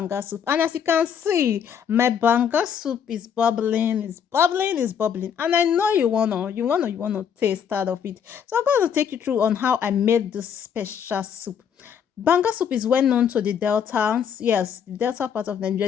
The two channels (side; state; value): right; quieter; 7.9 dB